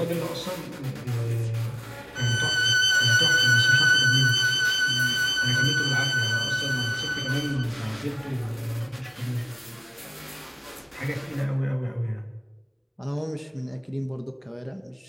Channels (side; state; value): both; identical; correlation 1.00